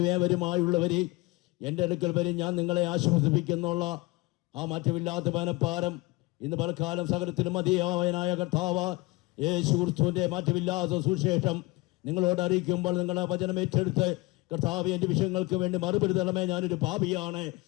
ഏവരുമായുള്ളവരെ എൻ്റെ അടുക്കൽ വരും, ഞാൻ നിങ്ങളെ ആശ്വസിപ്പിക്കുന്നുള്ള ആ മാറ്റമില്ലാത്ത മനപ്പാരം ഇന്ന് പലക്കാലം സകലത്തിലും മതിയായവനായ കർത്താവ് യേശു ക്രിസ്തുവിൻ്റെ മാറ്റമില്ലാത്ത സുവിശേഷം നിങ്ങളോട് അറിയിക്കുമ്പോൾ നിങ്ങളെ വചനം ഏറ്റെടുത്ത് കർത്താവ് എൻ്റെ വിഷയങ്ങൾക്ക് വേണ്ടി മറുപടി തരണമേ, ഞാനൊരു പാപിയാണ്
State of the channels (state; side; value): quieter; right; 23.0 dB